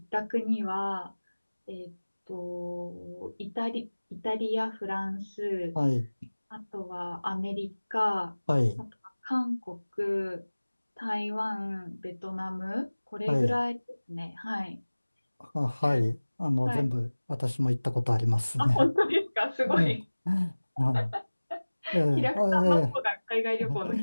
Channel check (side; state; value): both; inverted; correlation -1.00